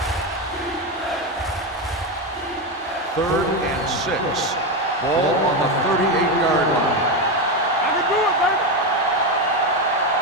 Third and 6. Ball on the 38-yard line. I can do it, baby.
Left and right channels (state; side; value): normal; both; correlation 0.12